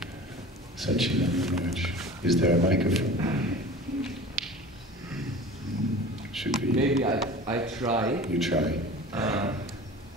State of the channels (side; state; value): both; normal; correlation 0.39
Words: Sachin and Manoj, is there a microphone? Should we? Maybe I try. You try.